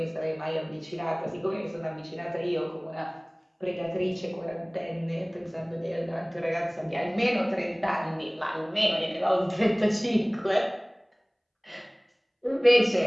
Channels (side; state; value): both; identical; correlation 1.00